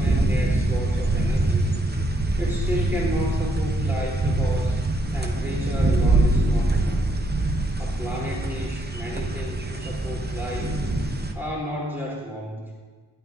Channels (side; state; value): both; normal; correlation 0.75